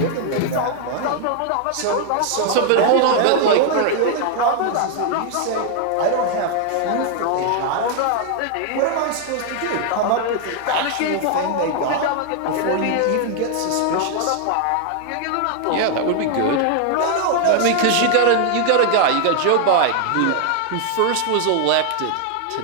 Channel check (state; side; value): different; both; correlation 0.00